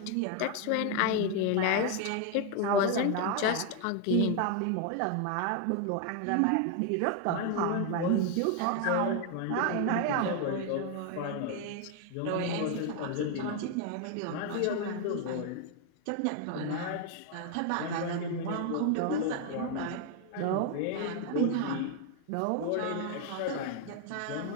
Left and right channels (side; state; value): both; different; correlation 0.01